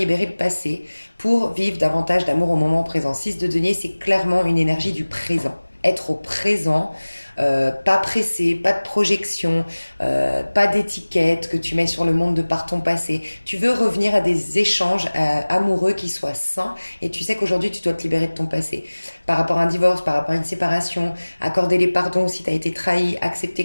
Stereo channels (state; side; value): inverted; both; correlation -1.00